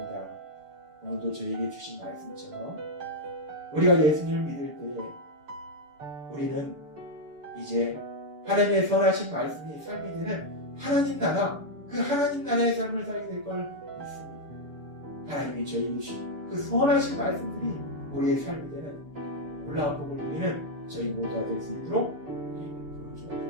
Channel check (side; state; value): left; late; 6.9 ms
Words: 오늘도 저에게 주신 말씀처럼 우리가 예수님을 믿을 때 우리는 이제 하나님의 선하신 말씀이 삶이 되는 하나님 나라, 그 하나님 나라의 삶을 살게 될 걸 믿습니다. 하나님이 저에게 주신 그 선하신 말씀들이 우리의 삶이 되는 놀라운 복을 누리는 저희 모두가 될 수 있도록 우리에게